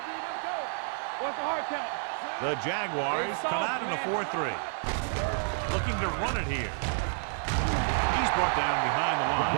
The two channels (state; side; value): silent; left; 58 dB below the other